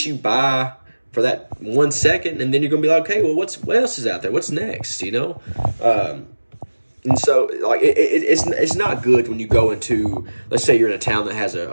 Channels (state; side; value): inverted; both; correlation -1.00